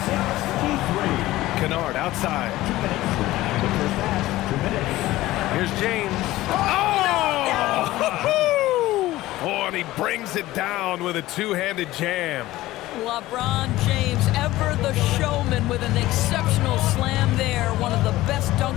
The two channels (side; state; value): right; quieter; 16.8 dB